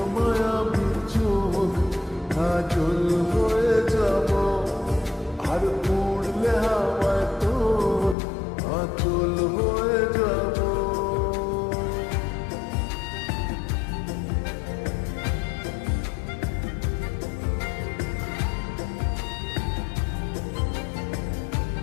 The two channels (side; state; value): right; drops out; at 8.2 s